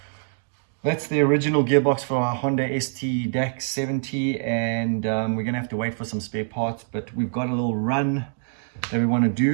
that's the original gearbox for our Honda ST DAX 70, and we're gonna have to wait for some spare parts, but we've got a little run that we want to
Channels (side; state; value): left; silent; digital silence